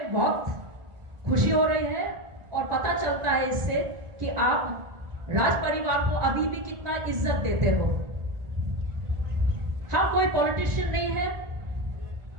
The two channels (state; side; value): late; left; 1.9 ms